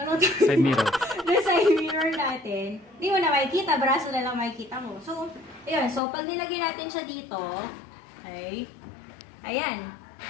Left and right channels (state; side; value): drops out; right; at 6.0 s